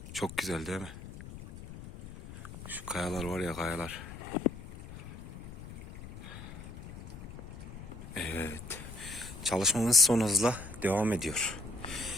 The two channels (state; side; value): noise; left; rumble, 13 dB below the sound